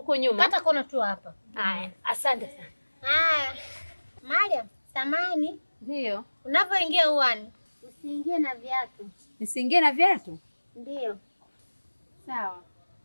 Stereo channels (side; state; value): both; inverted; correlation -1.00